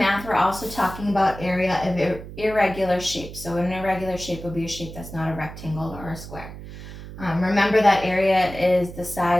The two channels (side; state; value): right; noise; hum, 13 dB below the sound